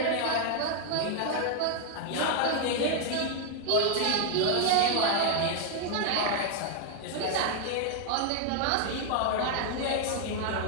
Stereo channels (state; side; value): different; both; correlation 0.01